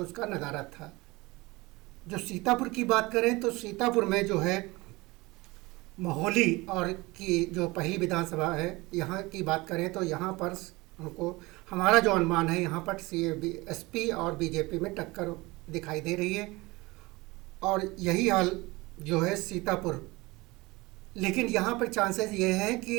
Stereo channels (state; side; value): quieter; left; 22.4 dB